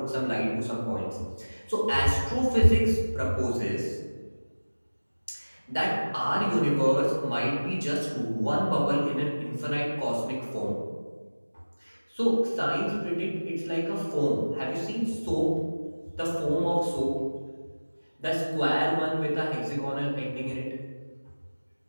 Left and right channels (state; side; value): inverted; both; correlation -1.00